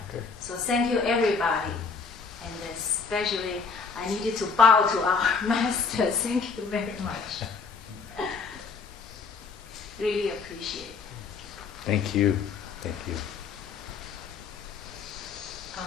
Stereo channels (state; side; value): quieter; right; 5.1 dB